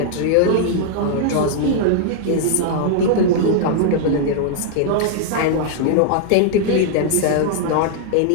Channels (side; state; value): both; different; correlation -0.01